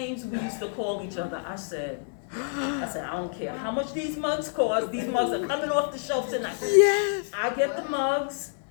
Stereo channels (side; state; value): right; silent; digital silence